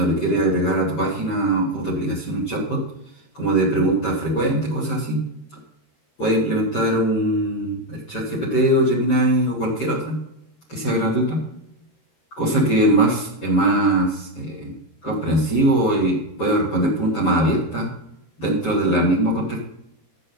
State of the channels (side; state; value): right; late; 13 ms